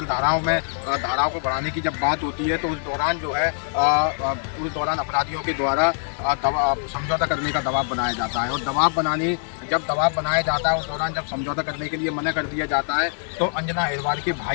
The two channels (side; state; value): right; silent; digital silence